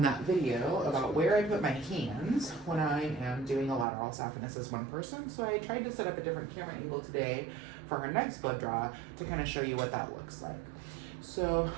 that video about where I put my hands when I am doing a lateral saphenous as one person. So I tried to set up a different camera angle today for her next blood draw to kind of show you what that looks like. So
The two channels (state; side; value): drops out; left; at 3.9 s